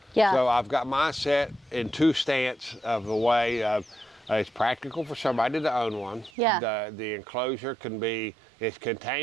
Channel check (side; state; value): left; drops out; at 6.3 s